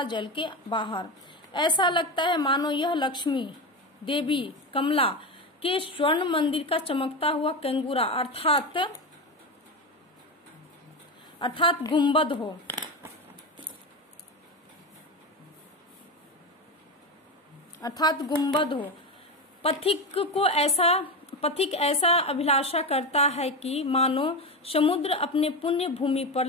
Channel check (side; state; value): both; normal; correlation 0.18